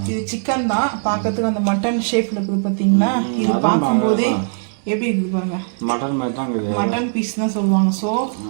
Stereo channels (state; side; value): silent; left; digital silence